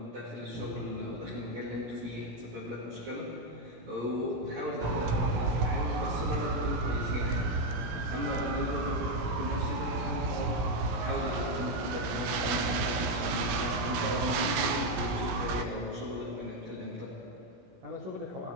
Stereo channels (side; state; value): left; late; 17 ms